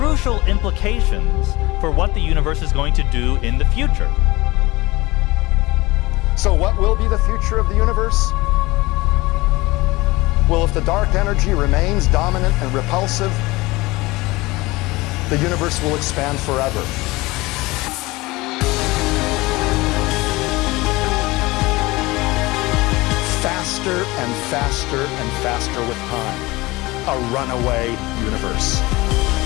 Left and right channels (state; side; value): quieter; right; 21.3 dB